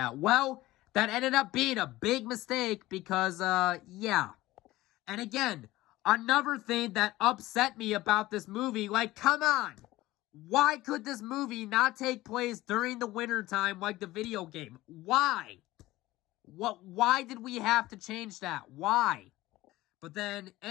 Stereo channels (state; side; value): quieter; right; 17.6 dB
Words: Well, that ended up being a big mistake because, yeah. And again, another thing that upset me about this movie, come on! Why could this movie not take place during the wintertime like the video game? Why? Why did we have to change that? Why? But then,